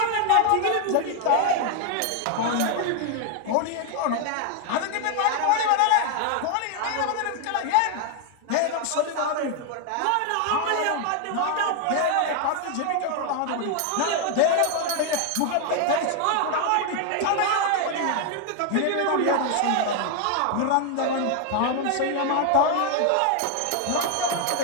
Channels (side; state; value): both; different; correlation 0.01